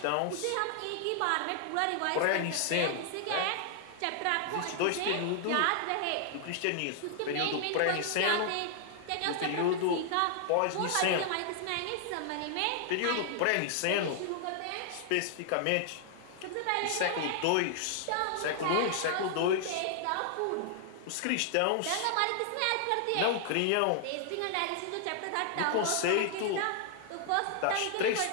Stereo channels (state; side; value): different; both; correlation 0.00